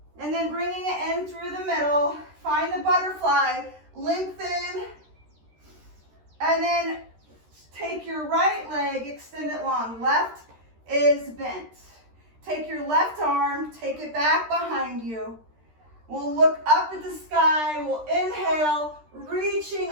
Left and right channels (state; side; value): late; left; 13 ms